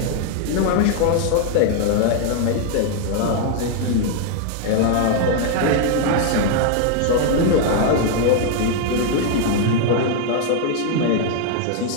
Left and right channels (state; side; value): different; both; correlation 0.00